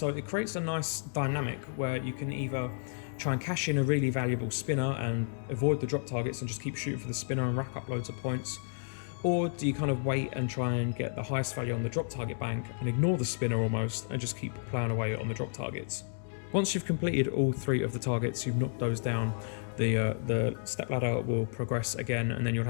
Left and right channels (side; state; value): right; silent; digital silence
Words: it creates a nice dynamic where you can either try and cash in a really valuable spinner and avoid the drop targets and just keep shooting for the spinner and rack up loads of points, or do you kind of wait and try and get the highest value on the drop target bank and ignore the spinner almost and just keep playing away on the drop targets. Once you've completed all three of the targets, you've knocked those down, the step ladder will progress again, and then you'll